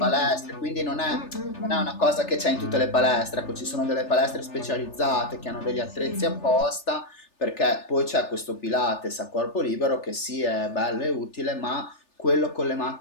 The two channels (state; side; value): late; right; 3.4 ms